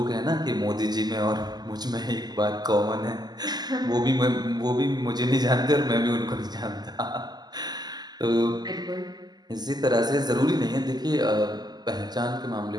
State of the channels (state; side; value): late; left; 0.20 ms